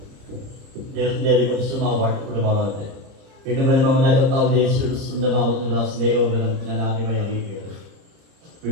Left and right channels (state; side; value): late; left; 30 ms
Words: കുടുംബമാകട്ടെ വീണ്ടും വരുന്ന കർത്താവ് യേശുവിന്റെ നാമത്തിലുള്ള സ്നേഹോപരം ഞാൻ ആദ്യമായി അറിയിക്കുകയാണ്.